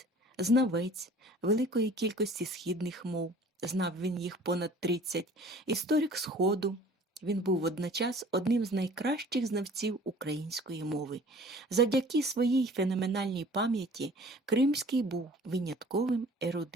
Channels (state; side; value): normal; both; correlation 0.48